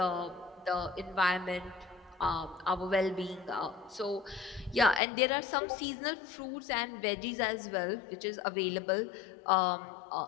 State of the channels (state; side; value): drops out; right; at 5.0 s